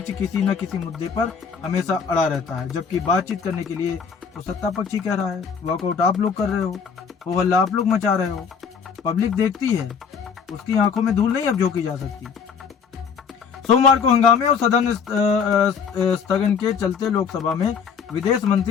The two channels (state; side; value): quieter; right; 6.3 dB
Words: किसी न किसी मुद्दे पर हमेशा अड़ा रहता है, जबकि बातचीत करने के लिए तो सत्ता पक्ष ही कह रहा है। वॉकआउट आप लोग कर रहे हो हल्ला आप लोग मचा रहे हो। पब्लिक देखती है, उसकी आंखों में धूल नहीं अब झोंकी जा सकती। सोमवार को हंगामे और सदन स्थगन के चलते लोकसभा में विदेश